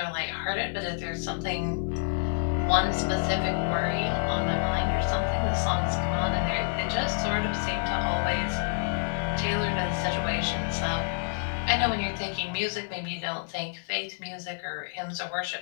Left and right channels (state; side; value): silent; right; digital silence